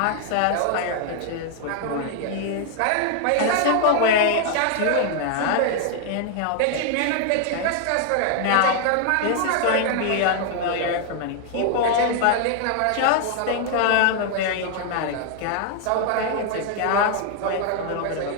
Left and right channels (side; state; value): both; different; correlation 0.00